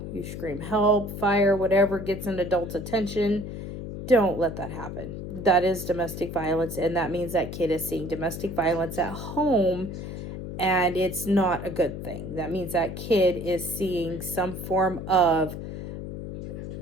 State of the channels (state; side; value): noise; left; hum, 8 dB below the sound